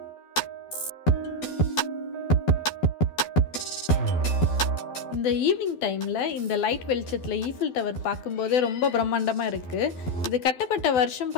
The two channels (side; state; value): right; late; 12 ms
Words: இந்த ஈவினிங் டைமில் இந்த லைட் வெளிச்சத்தில் ஈஃபில் டவர் பார்க்கும்போதே ரொம்ப பிரம்மாண்டமாக இருக்குது. இது கட்டப்பட்ட வருஷம்